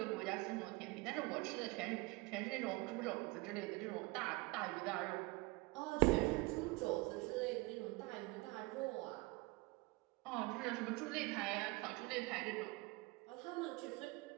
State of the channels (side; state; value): left; quieter; 24.2 dB